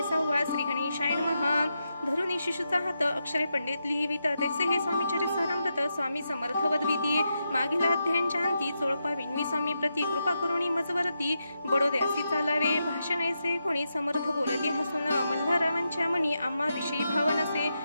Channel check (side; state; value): both; inverted; correlation -0.85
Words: 6. श्री गणेशाय नमः. धरुणी शिशुचा हात अक्षरे पंडित लिहिवित. तैसे हे स्वामी चरितामृत स्वामी समर्थ वदविती. मागील अध्यायांच्या अंती चोळपा विनवी स्वामी प्रती. कृपा करुणी मजवरती बडोद्यासी चालावे. भाषण ऐसे कोणी समर्थ बोलती हसून. मल्हाररावांच्या मनी आम्हा विषयी भाव नसे.